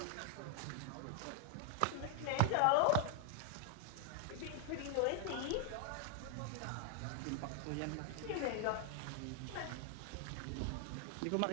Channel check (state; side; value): different; both; correlation 0.00